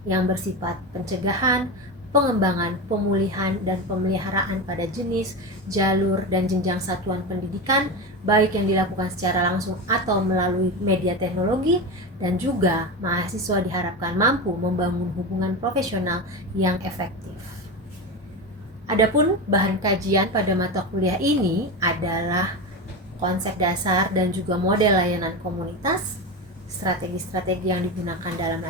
yang bersifat pencegahan, pengembangan, pemulihan, dan pemeliharaan pada jenis, jalur, dan jenjang satuan pendidikan, baik yang dilakukan secara langsung atau melalui media teknologi, dan juga mahasiswa diharapkan mampu membangun hubungan profesional yang efektif. Adapun bahan kajian pada mata kuliah ini adalah konsep dasar dan juga model layanan komunitas, strategi-strategi yang digunakan dalam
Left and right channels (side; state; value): both; normal; correlation 0.20